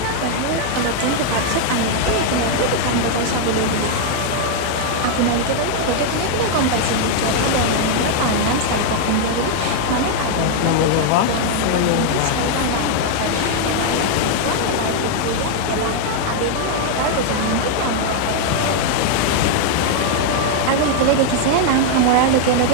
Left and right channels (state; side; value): different; both; correlation 0.00